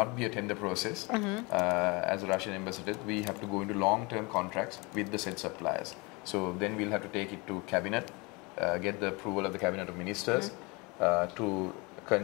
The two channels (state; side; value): quieter; right; 27.3 dB